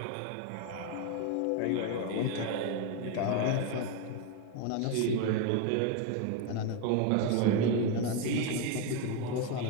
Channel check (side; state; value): both; different; correlation 0.02